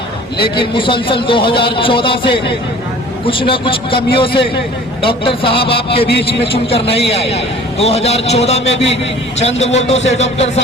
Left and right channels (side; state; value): both; normal; correlation 0.48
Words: लेकिन मुसलसल 2014 से कुछ न कुछ कमियों से डॉक्टर साहब आपके बीच में चुनकर नहीं आए। 2014 में भी चंद वोटों से डॉक्टर